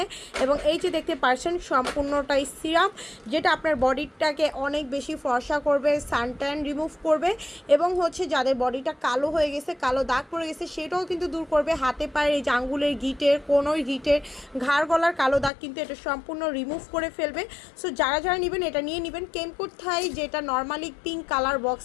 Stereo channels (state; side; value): drops out; right; at 15.5 s